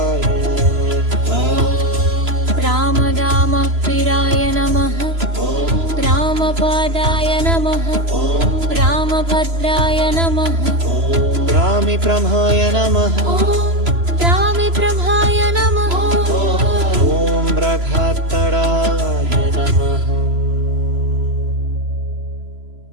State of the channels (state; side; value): late; left; 3.0 ms